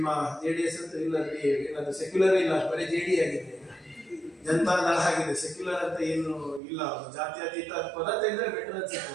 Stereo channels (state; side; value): drops out; left; at 6.6 s